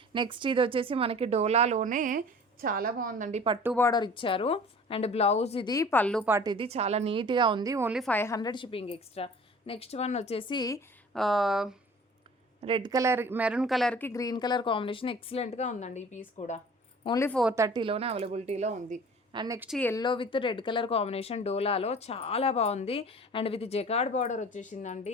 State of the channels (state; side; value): normal; both; correlation 0.44